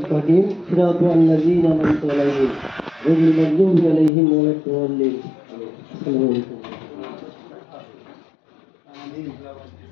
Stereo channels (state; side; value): drops out; right; at 4.1 s